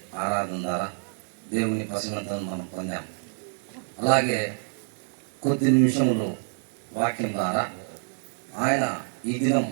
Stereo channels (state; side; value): silent; left; 60 dB below the other